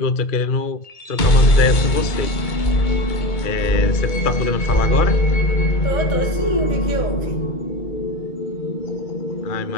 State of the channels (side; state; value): right; late; 2.2 ms